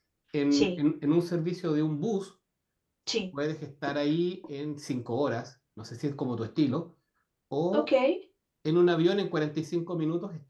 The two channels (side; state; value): both; identical; correlation 1.00